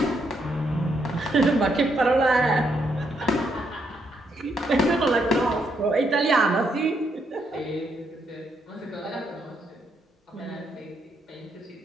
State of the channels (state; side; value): normal; both; correlation 0.76